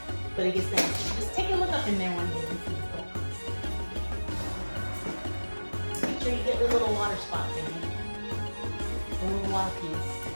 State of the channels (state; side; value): inverted; both; correlation -1.00